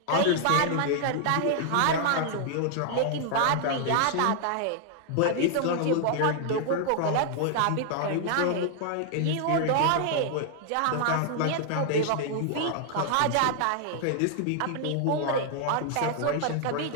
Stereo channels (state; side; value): different; both; correlation 0.00